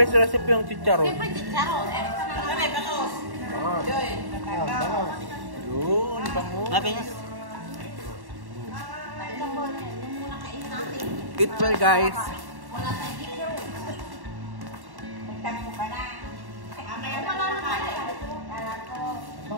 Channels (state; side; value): late; left; 1.1 ms